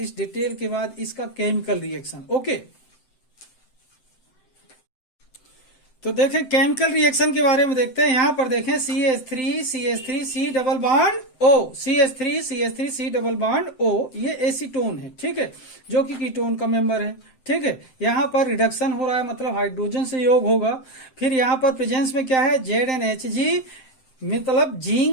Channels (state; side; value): late; right; 7.7 ms